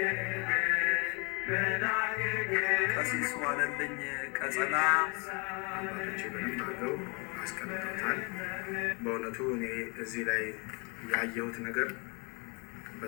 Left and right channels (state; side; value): quieter; right; 31.8 dB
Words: ቀሲስ ዋለልኝ ቀጸላ አባቶቼ በደንብ አድርገው አስቀምጠውታል። በእውነቱ እኔ እዚህ ላይ ያየሁት ነገር